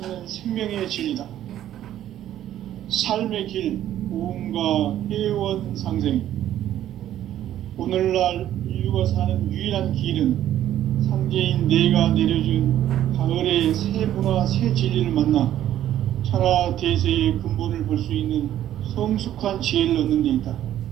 생명의 진리다. 삶의 길, 고음과 회원 상생. 오늘날 인류가 사는 유일한 길은 상제인 내가 내려준 가을의 새 문화, 새 진리를 만나 천하 대세의 근본을 볼 수 있는 성숙한 지혜를 얻는 데 있다.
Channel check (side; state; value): left; quieter; 12.0 dB